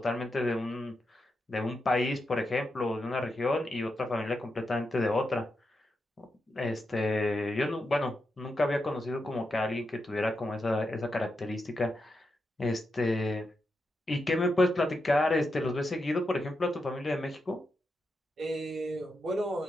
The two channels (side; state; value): both; normal; correlation 0.86